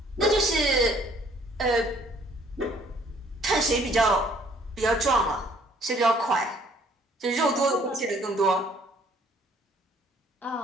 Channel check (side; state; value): both; normal; correlation 0.61